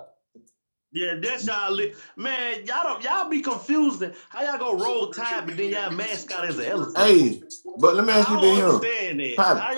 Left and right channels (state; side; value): inverted; both; correlation -1.00